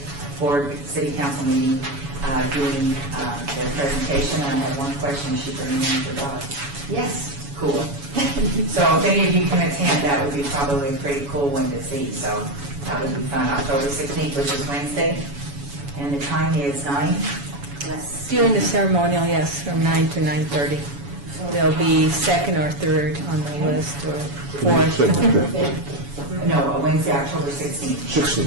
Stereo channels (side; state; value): left; late; 7.1 ms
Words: Board City Council meeting, doing the presentation. I have one question. Is she bringing in her dog? Yes. Cool. So if any of you can attend, that would be probably a pretty cool one to see. So that would be fun. October 16th, which is Wednesday. And the time is 9? Yes. During the ceremonial, yes, from 9 to 9:30. There'll be second or third on the list, or fourth. No, Wednesday, October 16th.